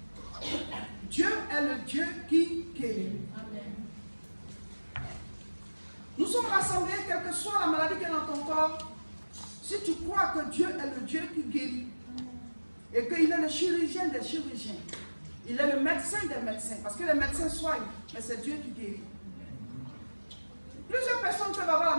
Dieu est le Dieu qui guérit. Nous sommes rassemblés, quelle que soit la maladie qui est dans ton corps, si tu crois que Dieu est le Dieu qui guérit, et qu'il est le chirurgien des chirurgiens, il est le médecin des médecins, parce que les médecins soignent, mais c'est Dieu qui guérit. Plusieurs personnes peuvent avoir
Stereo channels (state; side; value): inverted; both; correlation -1.00